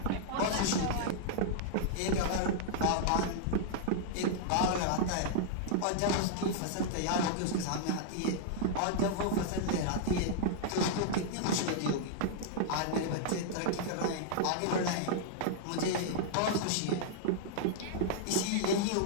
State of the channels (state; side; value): different; both; correlation -0.01